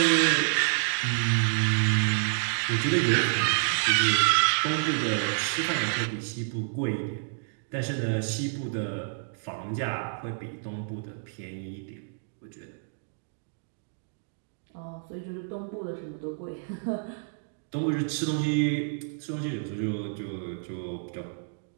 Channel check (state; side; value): silent; left; digital silence